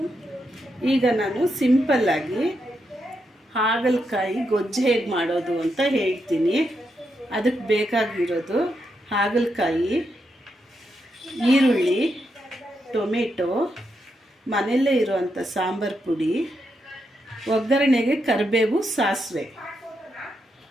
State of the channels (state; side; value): normal; both; correlation 0.83